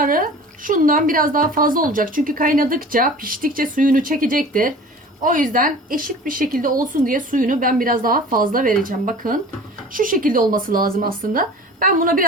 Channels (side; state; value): both; normal; correlation 0.41